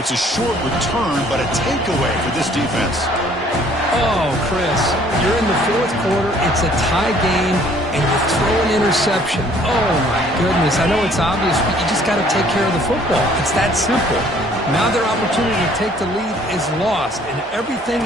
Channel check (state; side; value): normal; both; correlation 0.58